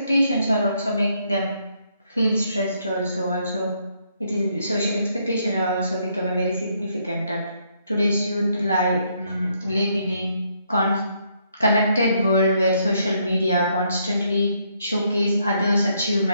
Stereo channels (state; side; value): inverted; both; correlation -0.73